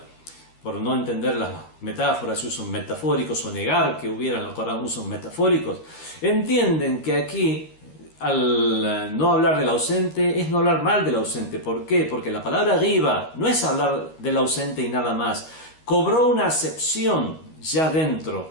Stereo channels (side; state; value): right; late; 13 ms